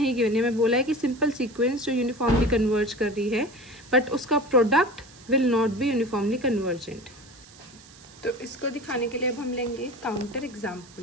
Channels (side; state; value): right; noise; hiss, 23 dB below the sound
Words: गिवन है, मैं बोला है कि सिंपल सीक्वेंस जो यूनिफॉर्मली कन्वर्ज कर रही है बट उसका product will not be uniformly convergent. तो इसको दिखाने के लिए अब हम लेंगे काउंटर